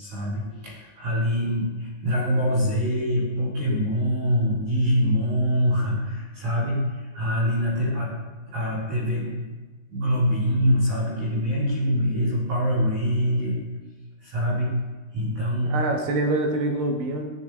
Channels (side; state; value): left; late; 19 ms